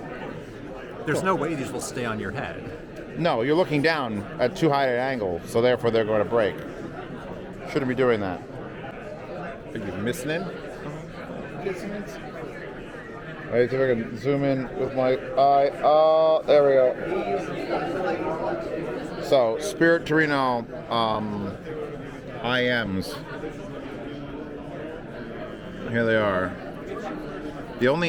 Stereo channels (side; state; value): both; identical; correlation 1.00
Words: there's no way these will stay on your head. No, you're looking down at too high an angle, so therefore they're going to break. Shouldn't be doing that. Are you missing it? Alright, so we can zoom in with my eye. Oh, there we go. So, Spirit Torino IMs. Here they are. The only